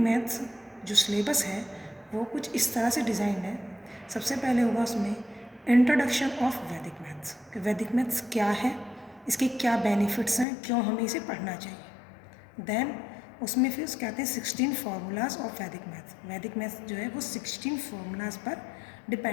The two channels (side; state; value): right; drops out; at 10.5 s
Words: जो सिलेबस है वो कुछ इस तरह से डिज़ाइन है। सबसे पहले होगा उसमें इंट्रोडक्शन ऑफ वैदिक मैथ्स कि वैदिक मैथ्स क्या है, इसके क्या बेनिफिट्स हैं, क्यों हमें इसे पढ़ना चाहिए। देन उसमें फिर कहते हैं 16 फार्मूलाज ऑफ वैदिक मैथ्स जो है वो 16 फार्मूलाज पर